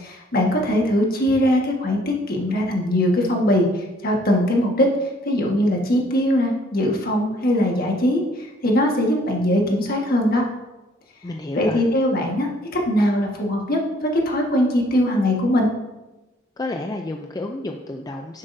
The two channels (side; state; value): both; normal; correlation 0.61